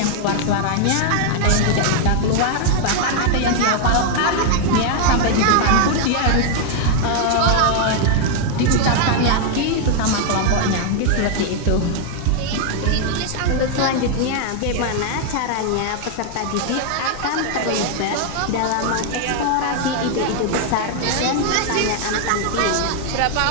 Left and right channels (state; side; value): different; both; correlation 0.00